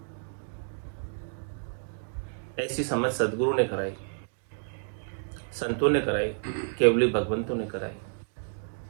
ऐसी समझ सदगुरु ने कराई, संतों ने कराई, केवली भगवंतों ने कराई।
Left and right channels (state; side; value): silent; left; digital silence